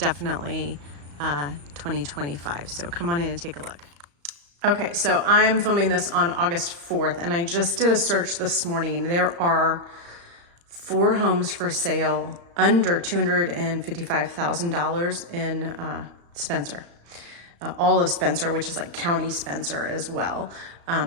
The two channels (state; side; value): late; left; 35 ms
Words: 2025. So come on in and take a look. Okay, so I'm filming this on August 4th, and I just did a search this morning. There are 4 homes for sale under $255,000 in Spencer. All of Spencer, which is like County Spencer as well.